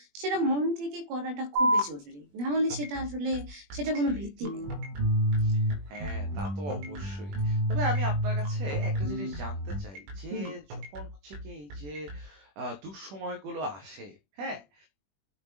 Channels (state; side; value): late; left; 21 ms